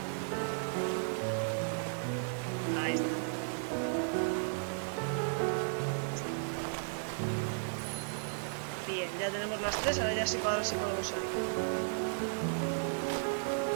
Ahí está. Bien, ya tenemos las tres, ahora ya sí para ver si podemos salir.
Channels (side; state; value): left; silent; 55 dB below the other